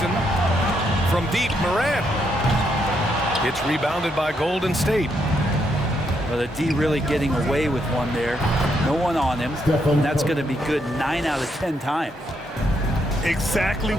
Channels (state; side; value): normal; both; correlation 0.77